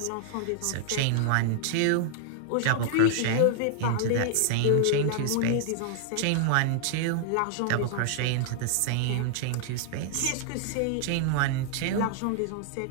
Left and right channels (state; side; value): different; both; correlation -0.01